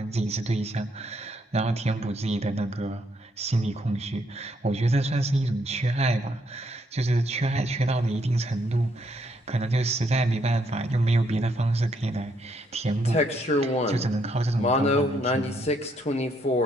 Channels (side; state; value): both; normal; correlation 0.72